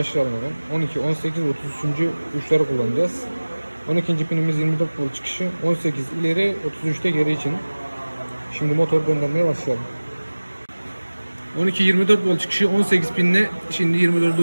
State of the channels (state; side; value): inverted; both; correlation -1.00